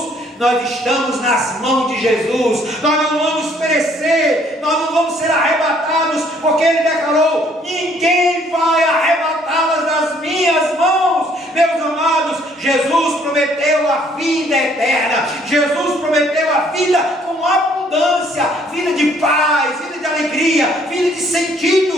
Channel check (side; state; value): both; normal; correlation 0.63